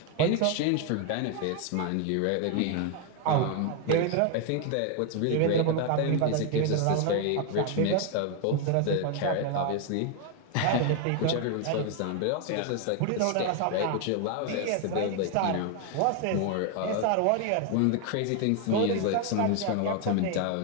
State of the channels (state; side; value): different; both; correlation 0.01